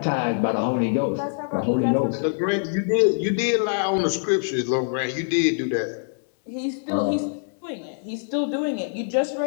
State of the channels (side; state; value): right; silent; 63 dB below the other